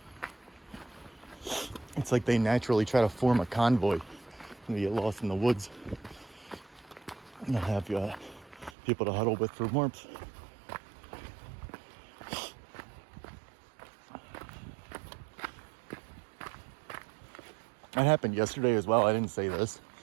It's like they naturally try to form a convoy and you get lost in the woods. And they'll have people to huddle with for warmth. That happened yesterday as well. I didn't say this.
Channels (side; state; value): left; drops out; at 8.7 s